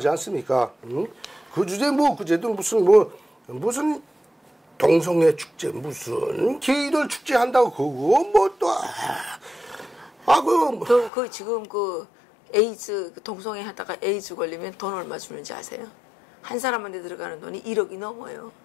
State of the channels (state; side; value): drops out; right; at 11.1 s